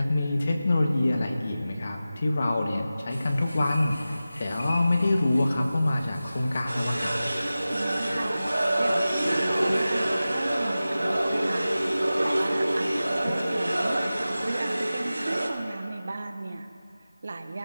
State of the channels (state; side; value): inverted; both; correlation -0.96